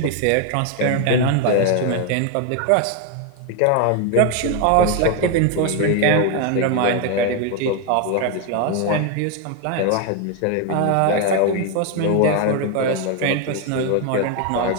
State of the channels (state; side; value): different; both; correlation 0.01